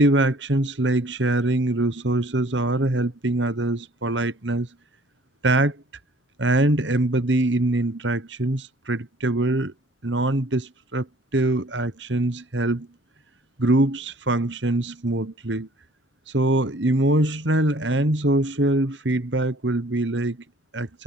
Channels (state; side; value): normal; both; correlation 0.55